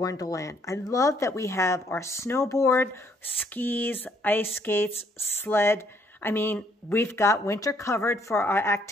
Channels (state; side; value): normal; both; correlation 0.67